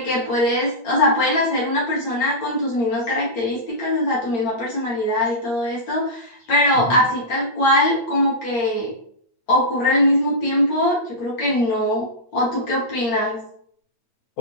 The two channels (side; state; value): right; late; 8.7 ms